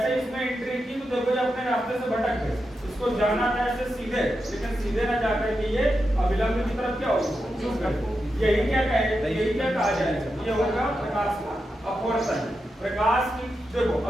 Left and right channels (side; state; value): both; normal; correlation 0.88